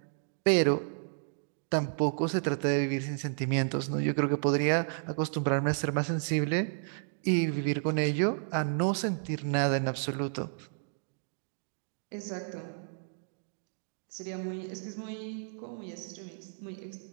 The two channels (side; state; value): left; silent; digital silence